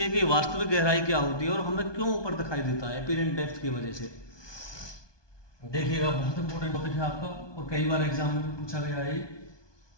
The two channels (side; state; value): right; late; 1.2 ms